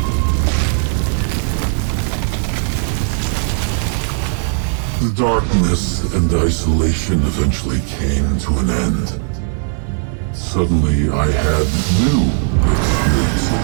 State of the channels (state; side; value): silent; left; 67 dB below the other